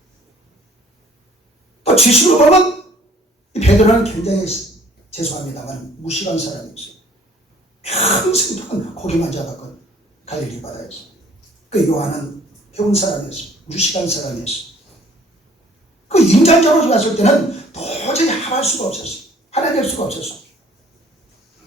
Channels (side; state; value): both; normal; correlation 0.56